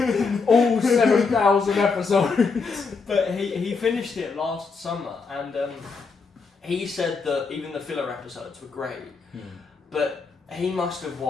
Piece. All 7,000 episodes. But he finished it last summer, and he said that even the filler episodes were great, but he must have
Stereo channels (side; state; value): right; quieter; 4.8 dB